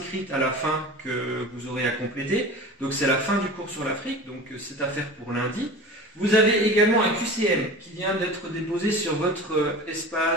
à la fin que vous aurez à compléter. Donc c'est la fin du cours sur l'Afrique. Donc c'est à faire pour lundi. Vous avez également un QCM qui vient d'être déposé sur votre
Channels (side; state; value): both; normal; correlation 0.35